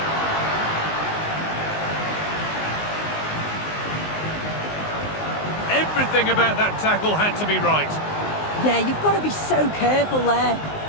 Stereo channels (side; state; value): right; late; 19 ms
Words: Everything about that tackle had to be right. Yeah, you've got to be so careful there.